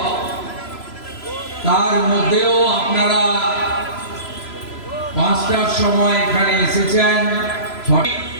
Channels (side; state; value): right; late; 3.0 ms